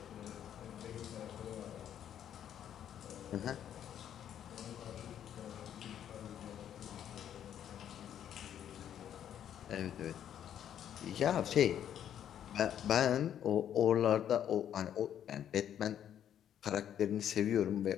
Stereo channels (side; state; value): right; quieter; 9.9 dB